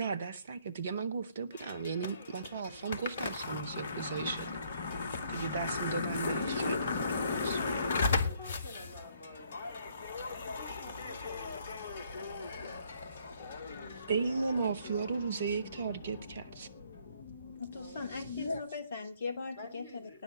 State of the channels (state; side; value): inverted; both; correlation -0.66